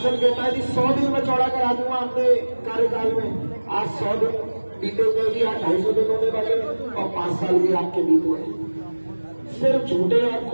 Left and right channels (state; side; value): inverted; both; correlation -1.00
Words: कहता है जी 100 दिन में चौड़ा करा दूंगा अपने कार्यकाल में। आज 100 दिन बीते हुए भी, आज 250 दिन होने वाले और 5 साल भी आपके बीत गए। सिर्फ झूठे और